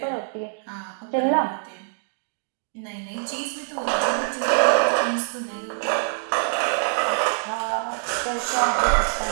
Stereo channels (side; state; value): left; silent; digital silence